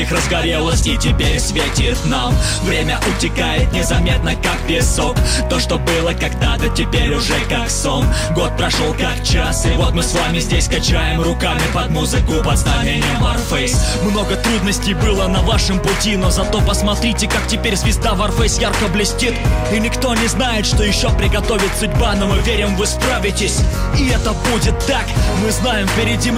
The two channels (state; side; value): identical; both; correlation 1.00